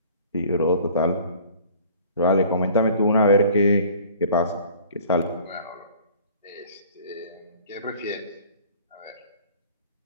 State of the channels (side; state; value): both; inverted; correlation -0.50